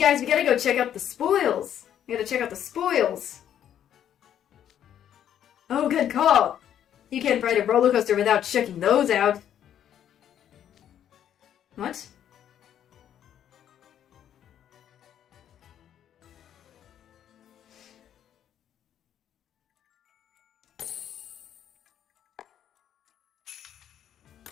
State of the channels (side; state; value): right; quieter; 10.1 dB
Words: we gotta go check out the spoils. We gotta check out the spoils. Oh, good call. You can't ride a roller coaster without checking those out. What?